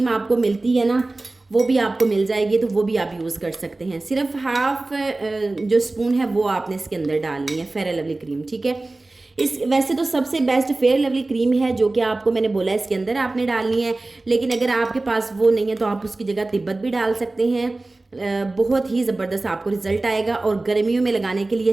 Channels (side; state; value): left; quieter; 3.0 dB